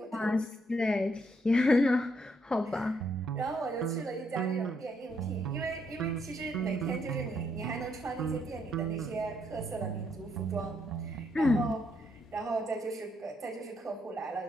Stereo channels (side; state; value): both; normal; correlation 0.74